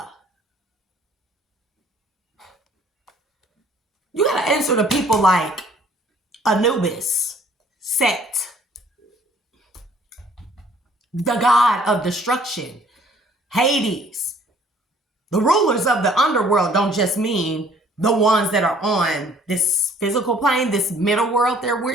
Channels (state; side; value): normal; both; correlation 0.57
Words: You got to answer to people like Anubis, Set, the god of destruction, Hades. The rulers of the underworld don't just mean the ones that are on this physical plane, this middle world that